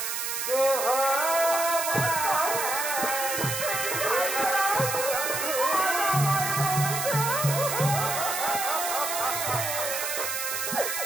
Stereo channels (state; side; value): noise; right; hiss, 2 dB below the sound